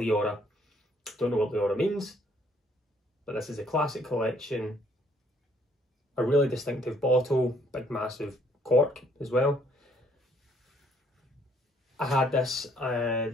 Don't know what Liora means, but this is a classic collection a really distinctive bottle, big massive cork as well. I had this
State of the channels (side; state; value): both; normal; correlation 0.65